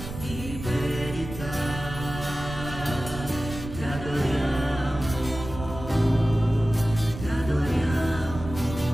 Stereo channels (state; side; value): noise; right; rumble, 10 dB below the sound